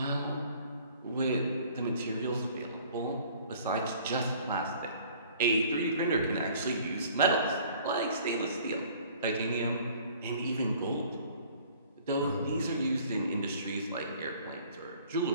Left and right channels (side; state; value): both; inverted; correlation -0.53